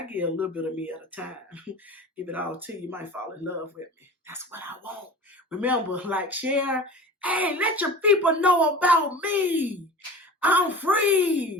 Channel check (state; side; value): normal; both; correlation 0.37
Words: give a little bit of me at a time. Give it all to you. You might fall in love with me. That's what I want. Remember, like, share. Hey, let your people know about me. I'm